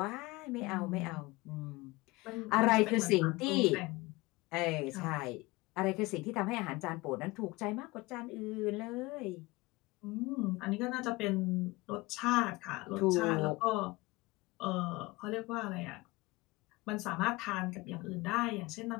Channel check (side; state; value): right; quieter; 22.0 dB